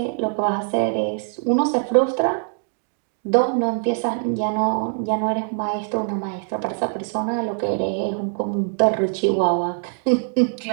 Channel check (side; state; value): left; silent; digital silence